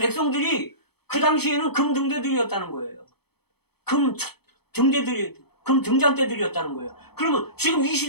그 당시에는 금 등대들이었다는 거예요. 금 등잔대들이었다는 거예요. 그러면 지금 이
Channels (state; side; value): late; right; 0.97 ms